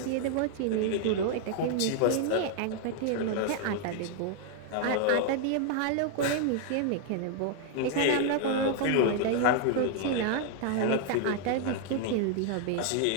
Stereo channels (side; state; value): both; different; correlation 0.00